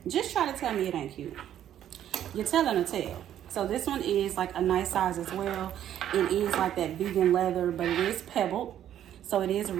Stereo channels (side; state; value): left; quieter; 10.9 dB